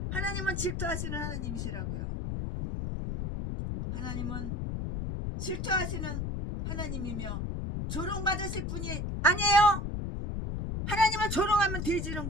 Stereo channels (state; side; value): noise; left; rumble, 3 dB below the sound